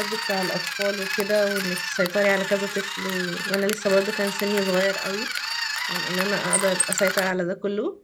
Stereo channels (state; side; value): identical; both; correlation 1.00